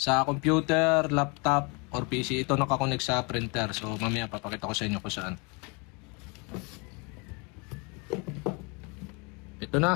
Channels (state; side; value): quieter; right; 31.4 dB